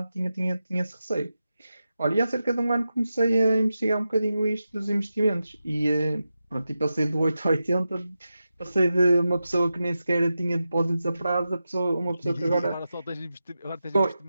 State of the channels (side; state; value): both; inverted; correlation -0.91